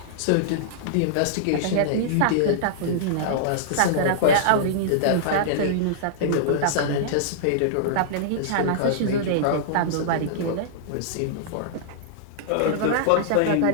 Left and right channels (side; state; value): both; different; correlation -0.02